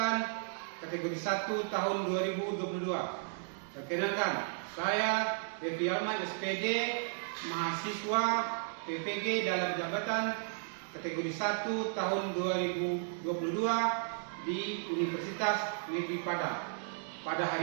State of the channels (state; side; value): silent; left; digital silence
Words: kategori 1 tahun 2022. Perkenalkan, saya Devi Alman SPD, mahasiswa PPG dalam jabatan kategori 1 tahun 2022 di Universitas Negeri Padang. Pada